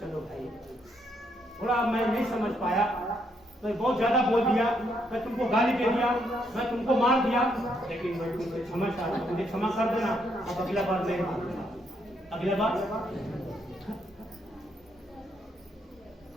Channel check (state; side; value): normal; both; correlation 0.75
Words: भाई, थोड़ा मैं नहीं समझ पाया, मैं बहुत ज्यादा बोल दिया, मैं तुमको गाली दे दिया, मैं तुमको मार दिया, लेकिन मैं तुमसे क्षमा चाहता हूं, मुझे क्षमा कर देना, अब अगला बार नहीं मांगूंगा, अगला बार